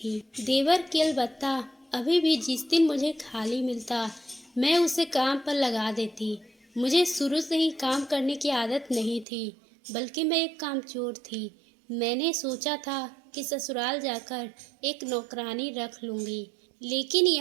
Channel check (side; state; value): left; drops out; at 9.2 s